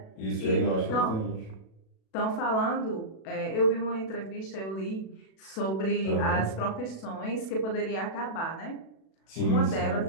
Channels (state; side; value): late; right; 37 ms